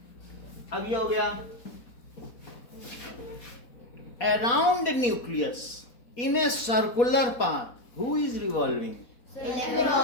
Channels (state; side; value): late; right; 4.2 ms